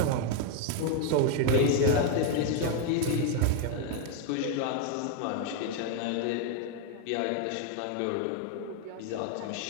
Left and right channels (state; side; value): different; both; correlation 0.00